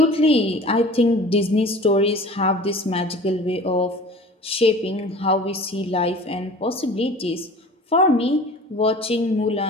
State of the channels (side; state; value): both; normal; correlation 0.43